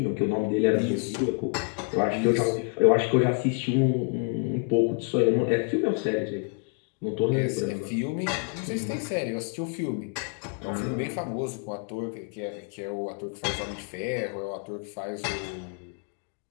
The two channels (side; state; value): right; quieter; 38.1 dB